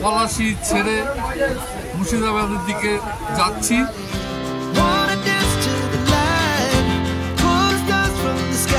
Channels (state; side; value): identical; both; correlation 1.00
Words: পলাশী ছেড়ে মুর্শিদাবাদের দিকে যাচ্ছি। wanna dance to the light, pulls dust from the